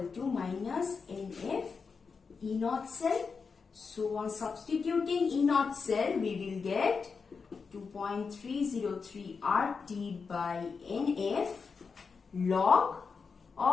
to minus NF E0 cell. So on substituting E0 cell, we will get 2.303 RT by NF log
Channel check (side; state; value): right; quieter; 5.2 dB